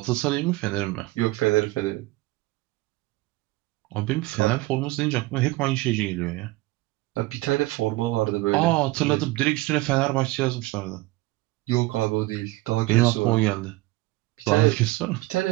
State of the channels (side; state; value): left; quieter; 20.2 dB